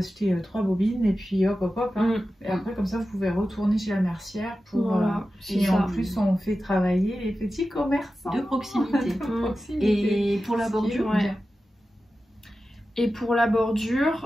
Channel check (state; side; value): normal; both; correlation 0.93